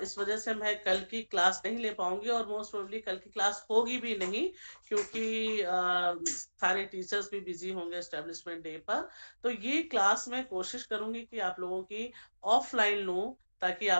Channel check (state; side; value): inverted; both; correlation -1.00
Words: इस वजह से मैं कल की क्लास नहीं ले पाऊंगी, और मोस्ट प्रोबेबली कल की क्लास होगी भी नहीं, क्योंकि सारे टीचर्स भी बिजी होंगे एस्टेब्लिशमेंट डे पर। तो ये क्लास मैं कोशिश करूंगी कि आप लोगों की ऑफलाइन लूं, ताकि